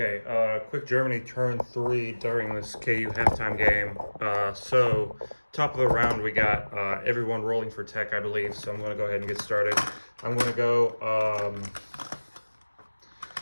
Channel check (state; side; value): inverted; both; correlation -1.00